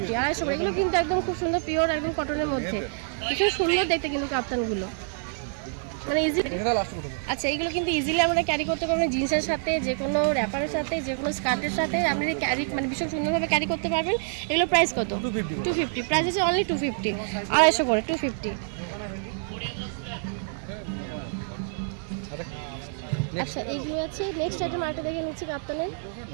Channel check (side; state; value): left; silent; digital silence